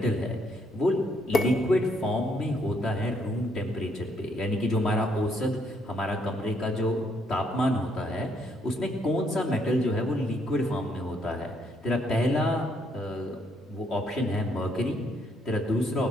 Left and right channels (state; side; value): normal; both; correlation 0.71